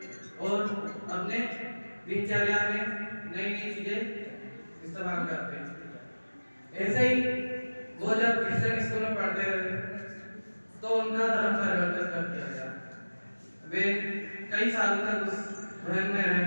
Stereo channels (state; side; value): inverted; both; correlation -1.00